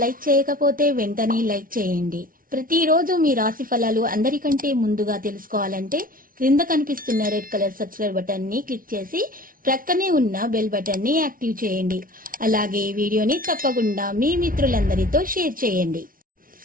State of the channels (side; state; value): left; late; 0.41 ms